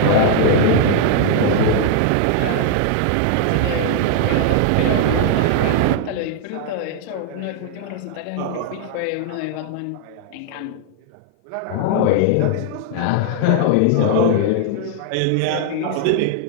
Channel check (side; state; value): both; different; correlation 0.00